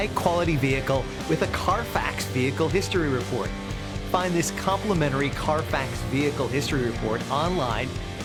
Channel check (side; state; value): both; identical; correlation 1.00